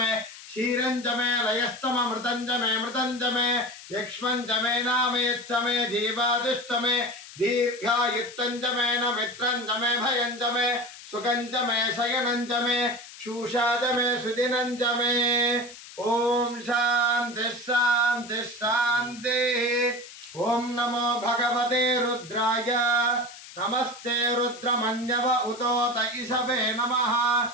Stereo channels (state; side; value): noise; left; hiss, 16 dB below the sound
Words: शीरंचमे लयस्तमे मृतंचमे यक्ष्मंचमे नामयच्चमे जीवादिष्टमे दीर्घायुत्तंचमे न मित्रंचमे भयंचमे सुखंचमे शयनंचमे शूषाचमे सुदिनंचमे। ओम शांति शांति शांति। ओम नमो भगवते रुद्राय नमस्ते रुद्रमन्यव उतोत ईशवे नमः